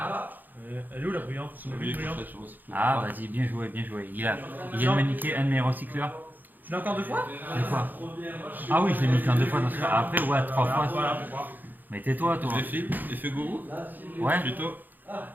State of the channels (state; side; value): late; left; 0.086 ms